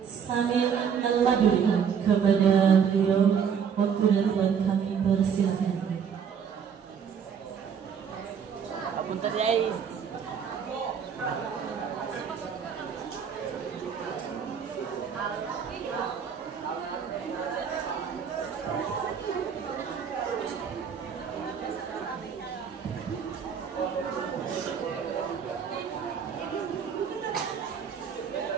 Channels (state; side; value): quieter; left; 7.2 dB